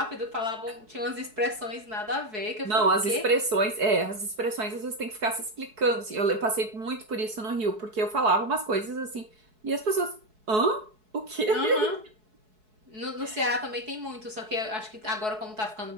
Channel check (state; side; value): late; left; 4.7 ms